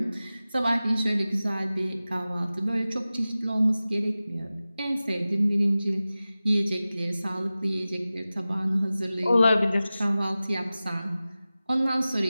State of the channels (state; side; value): inverted; both; correlation -0.96